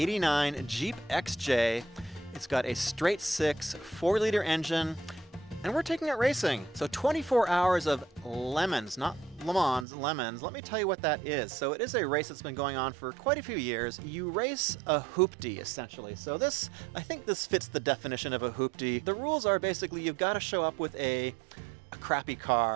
Jeep XJ. It's got a straight 6 4-liter engine, and we're taking it racing. So 24 hours of lemons, not Le Mans, lemons. Let me tell you what that is. So it is a race that's been going on for quite a few years. You race a hoopty, essentially. So I think this fits the definition of a hoopty. The rules are basically you've got to show up with a crappy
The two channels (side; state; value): left; drops out; at 9.9 s